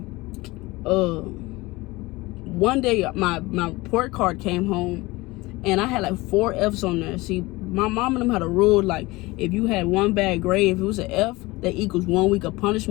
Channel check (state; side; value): quieter; right; 21.5 dB